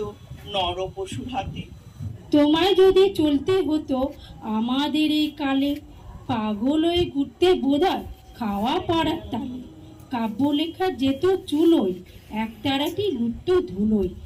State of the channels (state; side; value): identical; both; correlation 1.00